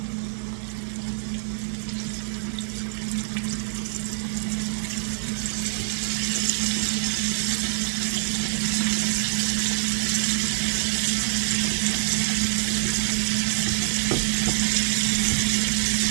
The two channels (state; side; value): silent; left; 62 dB below the other